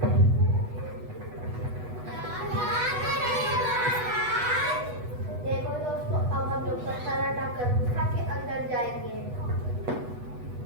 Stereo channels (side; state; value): left; late; 8.1 ms